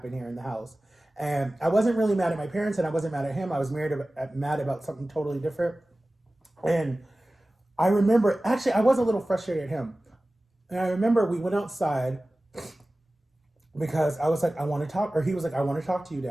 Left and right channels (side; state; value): both; normal; correlation 0.97